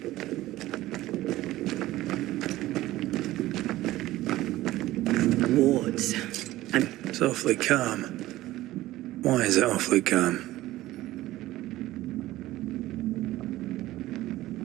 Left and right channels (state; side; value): quieter; left; 16.3 dB